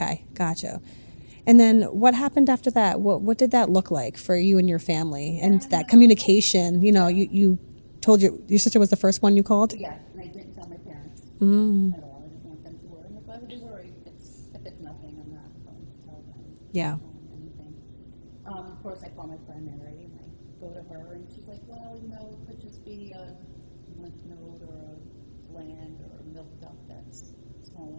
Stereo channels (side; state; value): both; inverted; correlation -1.00